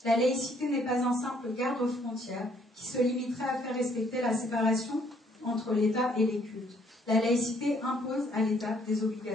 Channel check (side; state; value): both; normal; correlation 0.66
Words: La laïcité n'est pas un simple garde-frontière qui se limiterait à faire respecter la séparation entre l'État et les cultes. La laïcité impose à l'État des